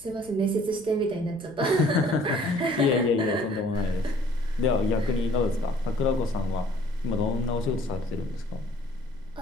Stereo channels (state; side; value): noise; left; rumble, 24 dB below the sound